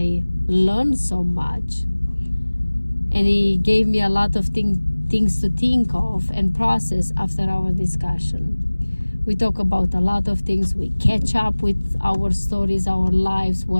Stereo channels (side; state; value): both; inverted; correlation -1.00